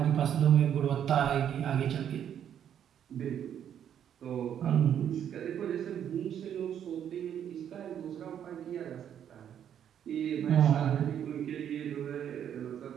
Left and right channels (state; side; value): quieter; left; 9.4 dB